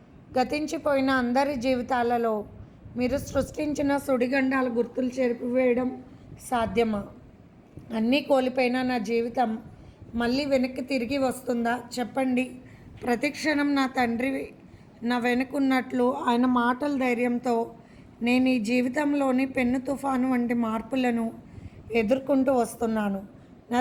గతించిపోయిన అందరి జీవితాలలో మీరు సృష్టించిన సుడిగండాల గుర్తులు చెరిపివేయడం సాధ్యమా? అన్నీ కోల్పోయిన నా జీవితం మళ్ళీ వెనక్కి తిరిగి వస్తుందా? చెప్పండి. ప్రతిక్షణం నా తండ్రి నా వెనుకున్నట్లు ఆయన మాటల ధైర్యంతో నేను ఈ జీవితంలోని పెన్ను తుఫాను వంటి మార్పులను ఎదుర్కొంటూ వస్తున్నాను. నా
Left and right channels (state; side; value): identical; both; correlation 1.00